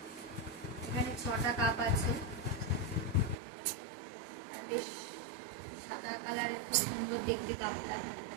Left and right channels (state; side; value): drops out; left; at 3.4 s